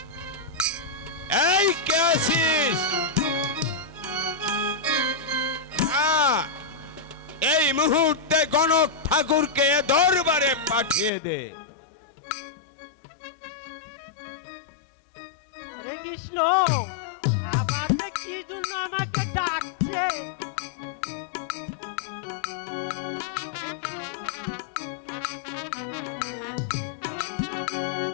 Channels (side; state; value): right; drops out; at 11.1 s